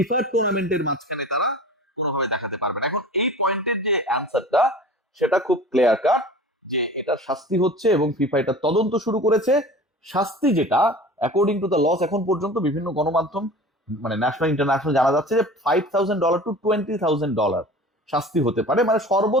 টুর্নামেন্টের মাঝখানে তারা কোনোভাবে দেখাতে পারবে না। এখন এই পয়েন্টের যে অ্যান্সারটা সেটা খুব ক্লিয়ার কাট, যে এটা শাস্তি হচ্ছে এবং ফিফা এটা তদন্ত শুরু করেছে। শাস্তি যেটা অ্যাকর্ডিং টু দ্য লস, এখন পর্যন্ত বিভিন্ন গণমাধ্যম মানে ন্যাশনাল ইন্টারন্যাশনাল জানা যাচ্ছে যে $5,000 to $20,000 শাস্তি হতে পারে। মানে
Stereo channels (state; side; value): normal; both; correlation 0.39